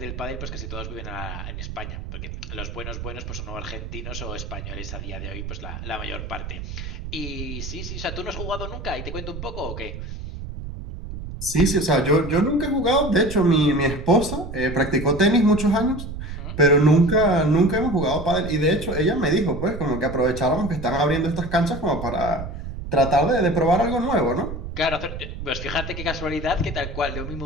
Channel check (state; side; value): noise; right; rumble, 8 dB below the sound